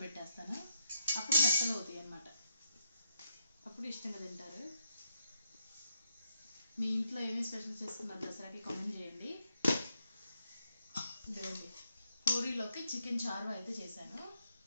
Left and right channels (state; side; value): inverted; both; correlation -0.79